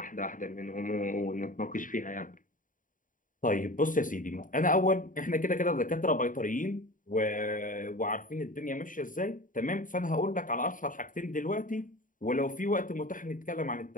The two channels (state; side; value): late; right; 0.39 ms